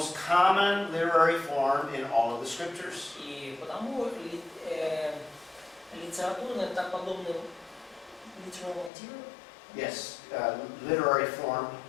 common literary form in all of the scriptures. И потому литературный, так подобный литературный, Yes, literary form.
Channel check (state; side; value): drops out; right; at 8.9 s